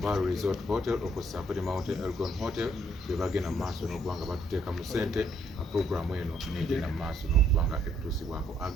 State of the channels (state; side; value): normal; both; correlation 0.68